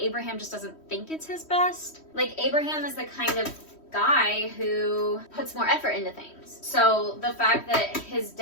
just doesn't think it's his best. Like, Abraham is the kind of guy who puts more effort into things. So the fact that his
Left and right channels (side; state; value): right; late; 3.1 ms